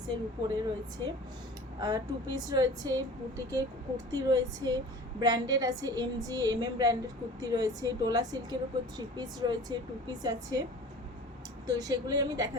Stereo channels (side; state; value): both; normal; correlation 0.41